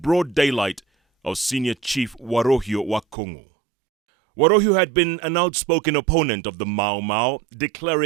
daylight, of Senior Chief Warohio wa Kongo. Warohio had been an outspoken opponent of the Mau Mau,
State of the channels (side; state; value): left; drops out; at 3.2 s